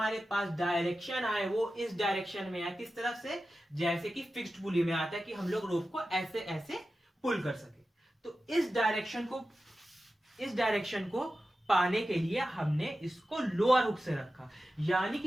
पास डायरेक्शन आए वो इस डायरेक्शन में आए। किस तरफ से? जैसे कि फिक्स्ड पुली में आता है कि हम लोग रोप को ऐसे ऐसे पुल कर सके। तो इस डायरेक्शन को पाने के लिए हमने इसको लोअर हुक से रखा। यानी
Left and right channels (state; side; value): normal; both; correlation 0.93